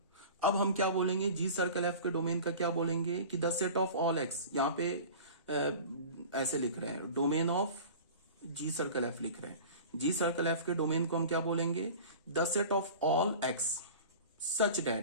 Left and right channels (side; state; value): both; inverted; correlation -0.38